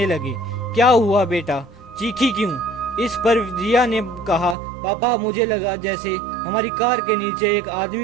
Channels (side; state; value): left; drops out; at 4.5 s